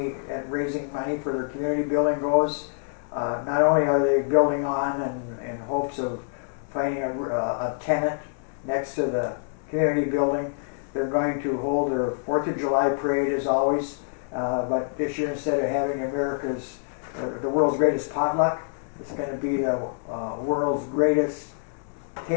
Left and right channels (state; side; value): silent; right; 61 dB below the other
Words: and raising money for their community building goes. Not only are they building on in hopes of finding a tenant next to the community building, they're going to hold their 4th of July parade as always But this year, instead of having the world's greatest potluck, it's going to be the world's greatest